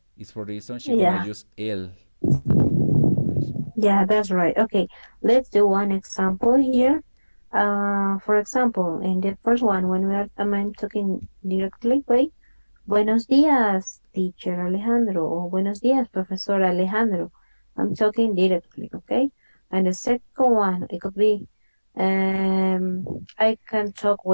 It's for the reason she's gonna use el. Yeah, that's right. Okay, let's do one example here. For example, in the first one, when I'm talking directly, wait, buenos días, teacher Alejandro, or buenos días, professor Alejandro. I'm talking directly, okay? And the second one, it could be, I can talk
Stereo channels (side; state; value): both; inverted; correlation -1.00